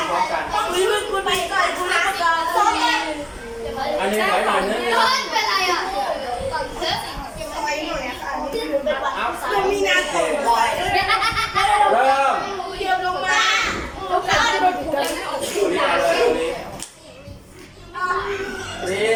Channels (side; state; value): both; identical; correlation 1.00